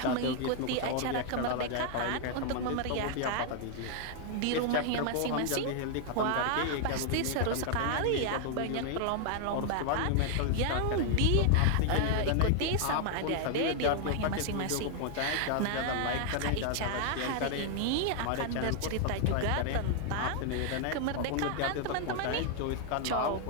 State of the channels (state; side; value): different; both; correlation 0.00